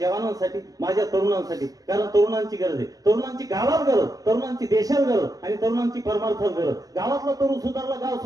जवानांसाठी, माझ्या तरुणांसाठी. कारण तरुणांची गरज आहे, तरुणांची गावात गरज, तरुणांची देशात गरज आणि तरुणांची परमार्थात गरज. गावातला तरुण सुधारला, गाव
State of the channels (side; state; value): left; late; 0.18 ms